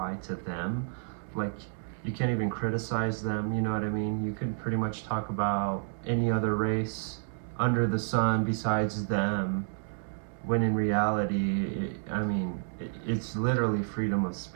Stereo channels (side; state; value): left; silent; 58 dB below the other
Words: to them. Like, you can't even criticize them, you know what I mean? You could pretty much talk about any other race under the sun besides them, when in reality, it's literally freedom of